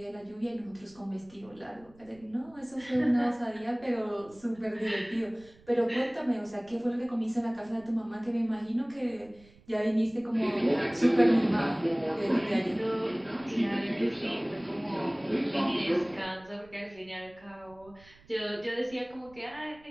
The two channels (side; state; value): right; noise; rumble, 26 dB below the sound